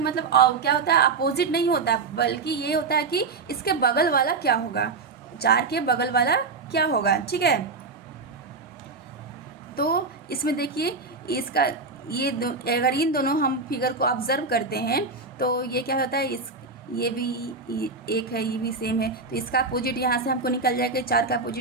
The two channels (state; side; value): quieter; left; 4.2 dB